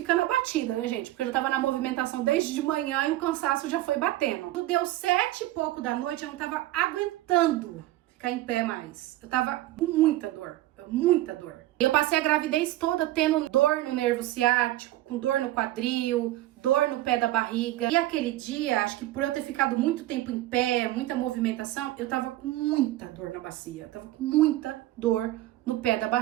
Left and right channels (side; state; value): left; quieter; 15.9 dB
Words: abatida, né, gente? Porque eu já tava na movimentação desde de manhã e o cansaço já foi batendo. Deu 7 e pouco da noite, eu não tava aguentando ficar em pé mais. Eu tava com muita dor. Muita dor. Eu passei a gravidez toda tendo dor no nervo ciático, com dor no quadril, dor no pé da barriga. E aquele dia, acho que por eu ter ficado muito tempo em pé, muita movimentação, eu tava com muita dor na bacia. Eu tava com muita dor no pé da